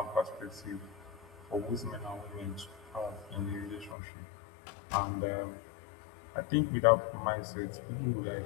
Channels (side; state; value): right; drops out; at 4.0 s